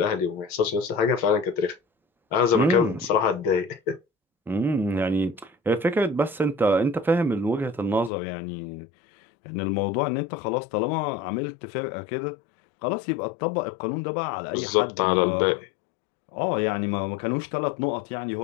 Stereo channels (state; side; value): drops out; right; at 8.1 s